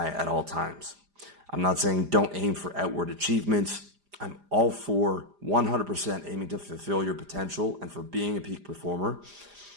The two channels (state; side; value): late; left; 4.9 ms